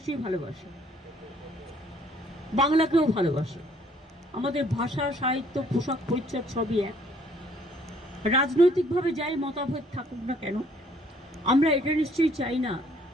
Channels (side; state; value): both; normal; correlation 0.62